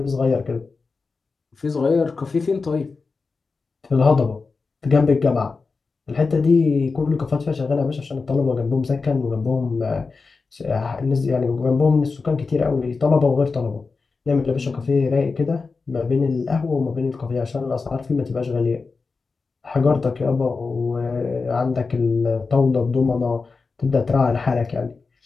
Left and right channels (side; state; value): right; quieter; 4.4 dB